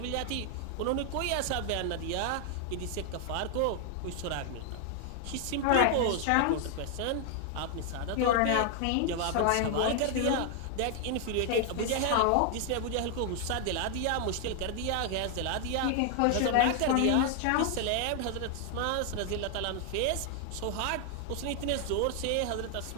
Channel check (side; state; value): both; different; correlation 0.00